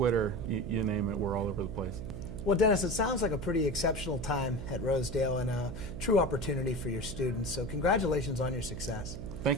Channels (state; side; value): noise; right; hum, 8 dB below the sound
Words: you name it, we're all over the place. Well, Dennis, it sounds like a pretty exceptional time at Rosedale and a true opportunity for your students. So congratulations on your success.